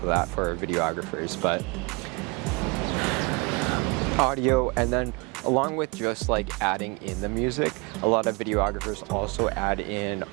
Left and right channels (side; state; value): left; quieter; 29.3 dB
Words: that for videographers, but audio, and then along with just adding in the music, a lot of videographers also add in